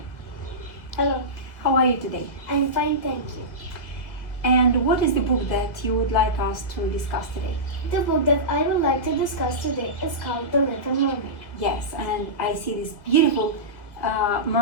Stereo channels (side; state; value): right; late; 2.0 ms